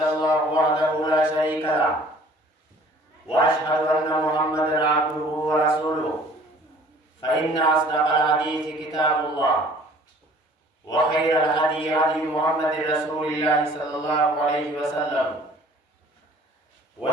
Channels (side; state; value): both; normal; correlation 0.52